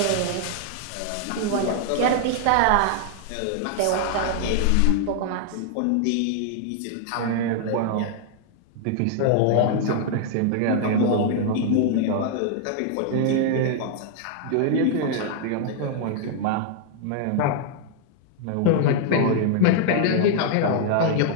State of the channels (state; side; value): different; both; correlation 0.00